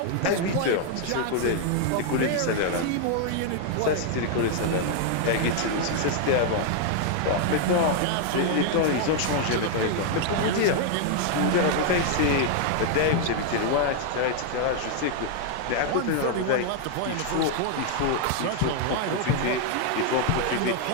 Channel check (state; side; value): different; both; correlation 0.00